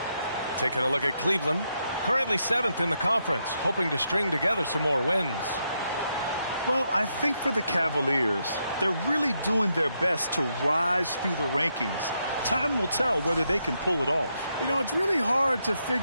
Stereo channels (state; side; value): inverted; both; correlation -0.81